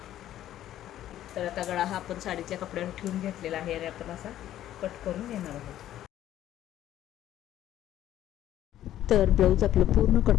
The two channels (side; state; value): right; quieter; 12.4 dB